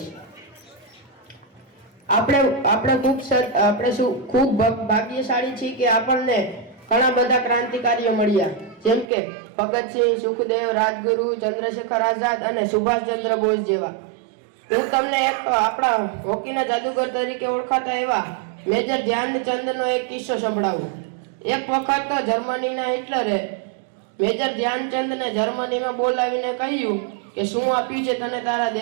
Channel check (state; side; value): drops out; left; at 9.1 s